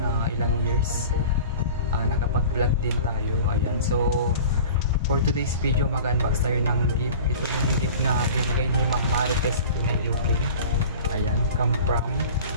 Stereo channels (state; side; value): inverted; both; correlation -0.40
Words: ilang years, nakapag-vlog din tayo. Ayan, so for today's video, mag-unbox tayo ng gift. Ito yung gift na binigay ni Ma'am Marites, Pinay, UK. Ayan, come from,